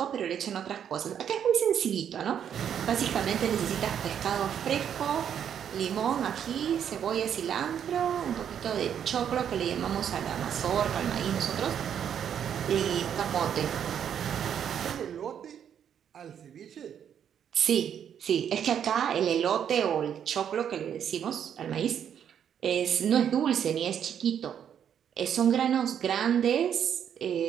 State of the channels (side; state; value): left; quieter; 8.8 dB